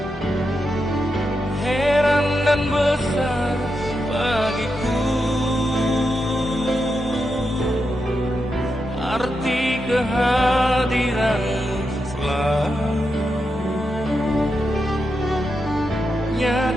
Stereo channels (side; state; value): both; normal; correlation 0.86